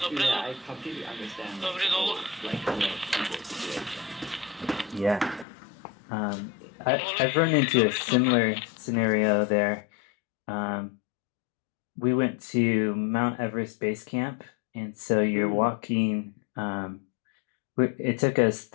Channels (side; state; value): right; drops out; at 5.5 s